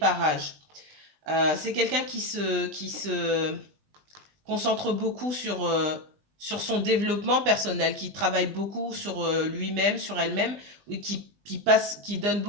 C'est quelqu'un qui se concentre beaucoup sur son développement personnel, qui travaille beaucoup sur lui-même, sur elle-même, et qui donne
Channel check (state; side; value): late; left; 20 ms